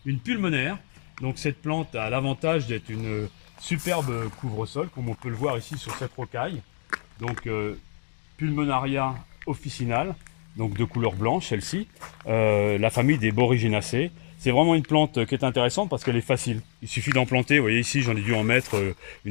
une pulmonaire. Donc cette plante a l'avantage d'être une superbe couvre-sol, comme on peut le voir ici sur cette rocaille. Donc Pulmonaria officinale, donc de couleur blanche celle-ci, la famille des Boryginaceae. C'est vraiment une plante qui est intéressante parce qu'elle est facile. Il suffit d'en planter, vous voyez ici j'en ai dû en mettre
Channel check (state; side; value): silent; right; digital silence